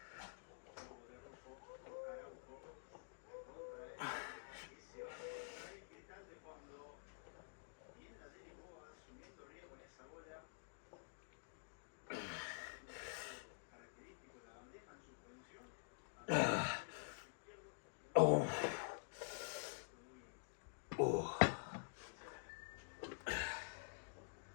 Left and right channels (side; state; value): right; silent; digital silence